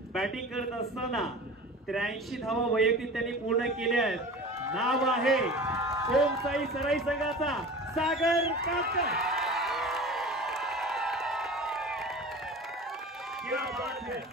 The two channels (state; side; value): normal; both; correlation 0.37